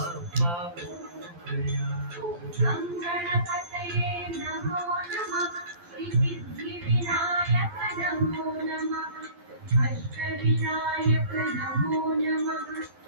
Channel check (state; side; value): late; left; 12 ms